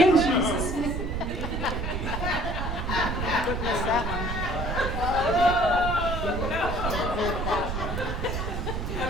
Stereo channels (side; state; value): right; noise; rumble, 3 dB below the sound